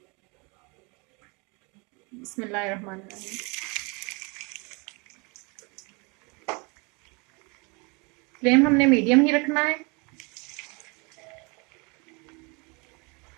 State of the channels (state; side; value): quieter; left; 30.2 dB